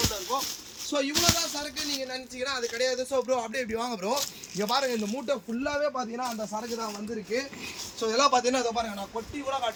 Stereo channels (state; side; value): identical; both; correlation 1.00